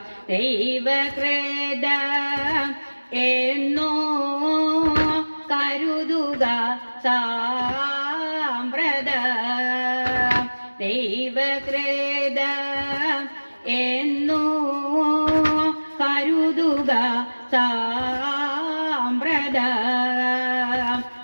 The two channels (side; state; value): both; inverted; correlation -1.00